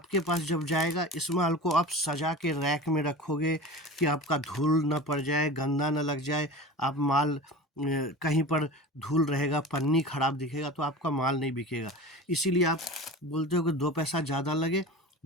पास जब जाएगा, इस माल को आप सजा के रैक में रखोगे कि आपका धूल न पड़ जाए, गंदा न लग जाए। आप माल कहीं पर धूल रहेगा, पन्नी खराब दिखेगा तो आपका माल नहीं बिकेगा। इसीलिए आप बोलते हो कि 2 पैसा ज़्यादा लगे,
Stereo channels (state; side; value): normal; both; correlation 0.33